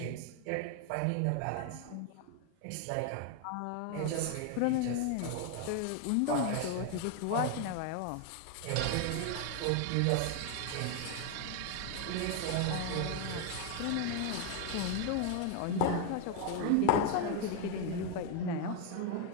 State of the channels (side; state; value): both; different; correlation 0.01